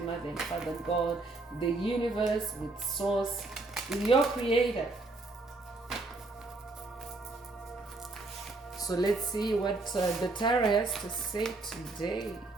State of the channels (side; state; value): left; quieter; 3.2 dB